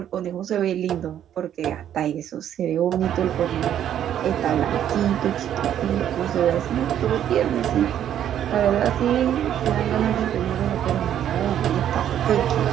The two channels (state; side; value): quieter; left; 10.4 dB